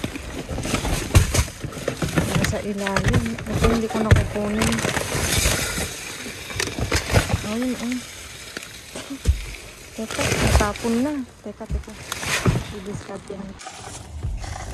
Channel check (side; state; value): both; identical; correlation 1.00